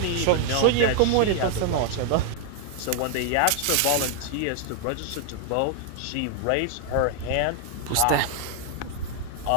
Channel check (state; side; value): different; both; correlation 0.00